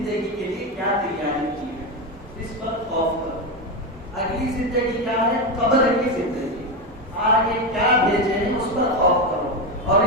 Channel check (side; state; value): both; normal; correlation 0.13